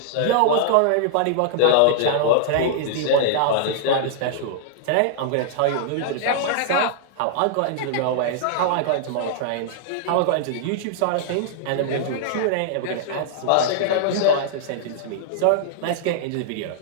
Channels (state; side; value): different; both; correlation -0.01